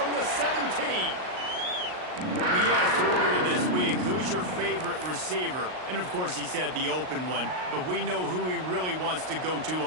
the 17. We asked earlier this week, who's your favorite receiver? And, of course, he said the open one. But we know who he really wants to go to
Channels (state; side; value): late; left; 38 ms